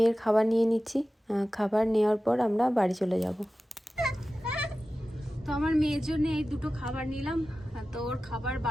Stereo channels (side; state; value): both; normal; correlation 0.95